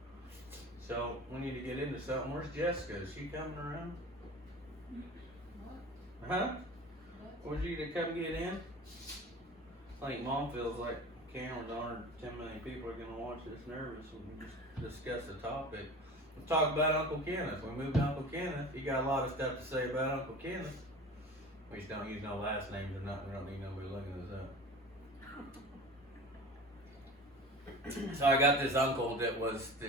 so we need to get into something. Where's Jessica? Is she coming around? What? Huh? Would you to come get in? I think Mom feels like cameras on her. 10 million people are going to watch this nervous when we just discuss the topic. We'll talk about Uncle Kenneth. We moved to Uncle Kenneth. He got a lot of stuff to say about Uncle Kenneth. We just don't use no last names or nothing. We don't need nobody looking this up. So I got this uncle that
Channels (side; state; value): both; normal; correlation 0.37